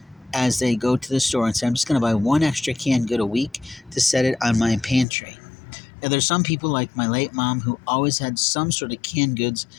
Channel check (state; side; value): drops out; right; at 5.1 s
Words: as they go to the store and say, I'm just going to buy one extra canned good a week to set it on my pantry. Now, there's some people like my late mom who always had some sort of canned goods